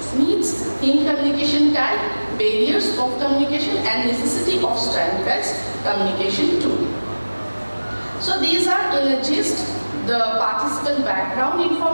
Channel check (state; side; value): inverted; both; correlation -1.00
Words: needs, theme communication type, barriers of communication, and necessity of standardized communication tool. So these are in a gist the participant background